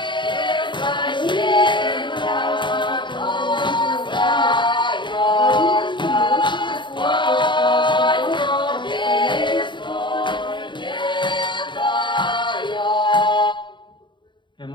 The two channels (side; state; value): right; late; 0.23 ms